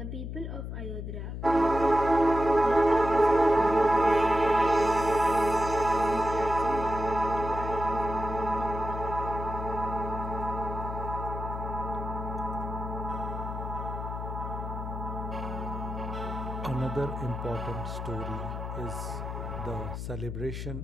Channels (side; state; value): left; noise; hum, 6 dB below the sound